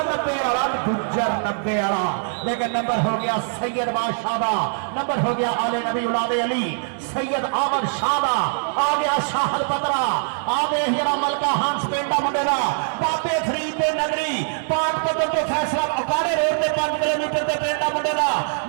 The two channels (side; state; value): left; silent; digital silence